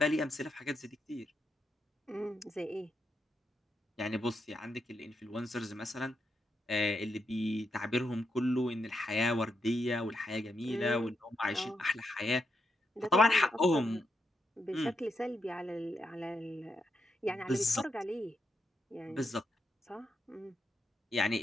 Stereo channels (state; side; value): normal; both; correlation 0.82